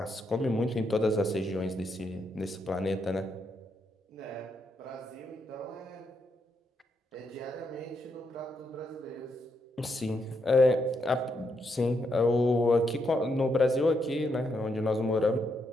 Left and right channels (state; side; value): normal; both; correlation 0.79